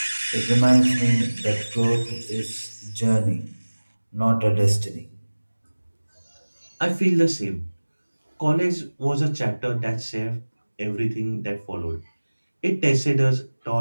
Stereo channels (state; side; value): inverted; both; correlation -1.00